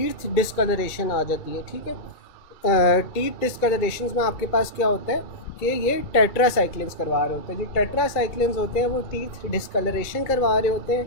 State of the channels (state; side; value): late; right; 2.1 ms